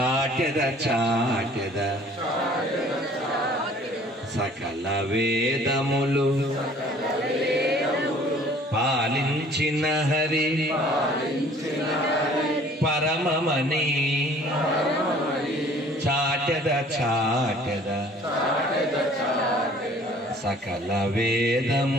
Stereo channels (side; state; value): both; normal; correlation 0.53